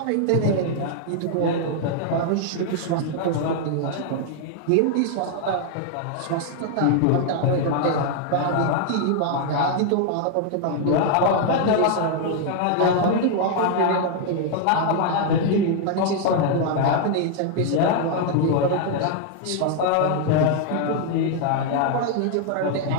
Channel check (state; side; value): different; both; correlation 0.00